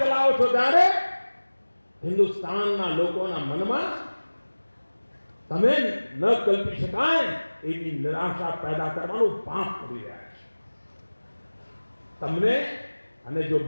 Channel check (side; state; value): both; inverted; correlation -1.00